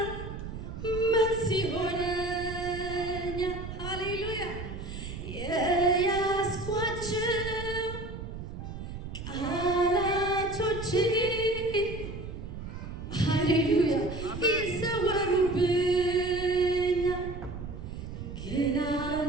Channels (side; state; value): right; noise; rumble, 9 dB below the sound